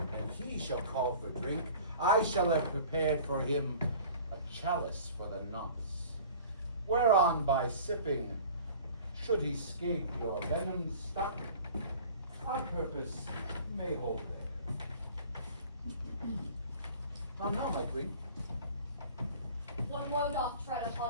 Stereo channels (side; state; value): both; inverted; correlation -0.44